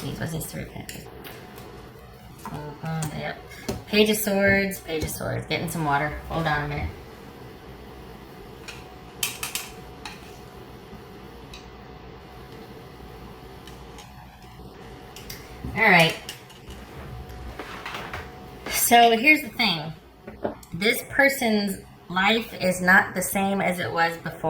What's this Three of Pentacles? Yep. Page of Swords. Page of Swords. Getting some water. Hold on a minute. All right. So here's the thing. This person's life is not the same as it was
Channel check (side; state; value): both; identical; correlation 1.00